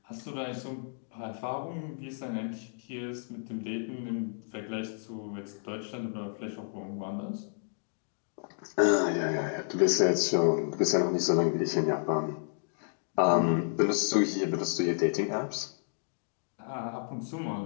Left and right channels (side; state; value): right; silent; digital silence